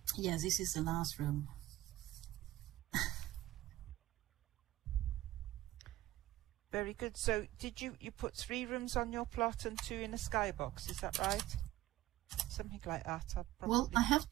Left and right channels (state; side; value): quieter; left; 16.0 dB